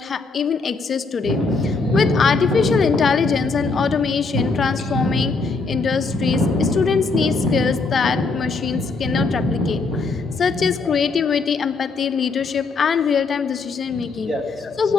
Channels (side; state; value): right; quieter; 4.2 dB